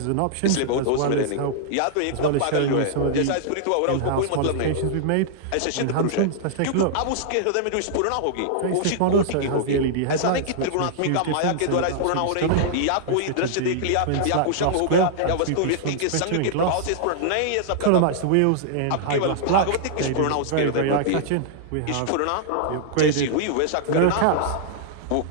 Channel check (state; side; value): different; both; correlation -0.01